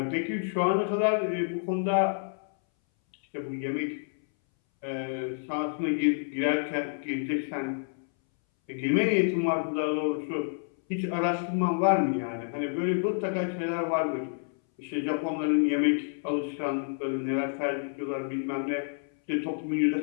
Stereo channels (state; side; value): silent; right; 59 dB below the other